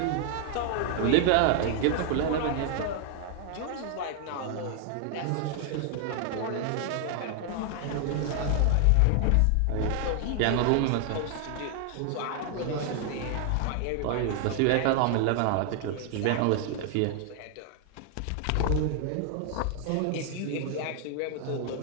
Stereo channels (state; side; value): different; both; correlation 0.00